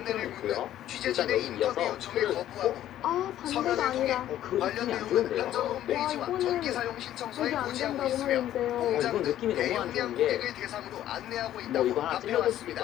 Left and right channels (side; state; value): right; quieter; 12.3 dB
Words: 필요는 있고요. 묻는 일단 취재진의 여기 이어서 인터뷰 요청을 풀을 거부하고 아, 반대가 아니라. 그 느낌이 안 좋은데요. 한전 와, 홈페이지와 이거는 전기 사용 신청서에 이게 안 고지하고 된다고 있으며 하는데요. 이건 느낌이 너무 안 좋은 게 뭐 이거 하나 찔러줄 수도 있고